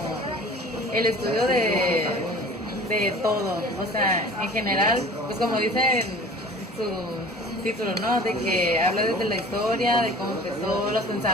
el estudio de todo, o sea, en general, pues como dice en su título, ¿no? De que habla desde la historia, de cómo empezó, los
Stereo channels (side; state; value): both; normal; correlation 0.44